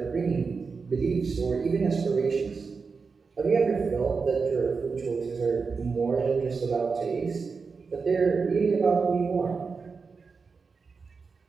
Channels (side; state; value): left; quieter; 4.9 dB